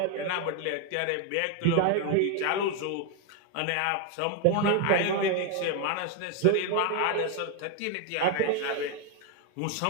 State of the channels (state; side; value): different; both; correlation 0.01